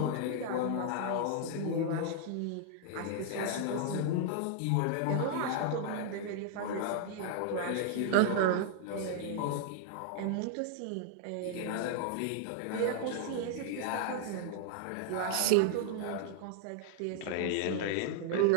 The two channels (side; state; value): both; different; correlation 0.00